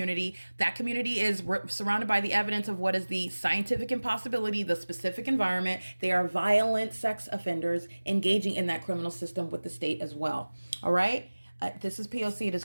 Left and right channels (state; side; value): inverted; both; correlation -1.00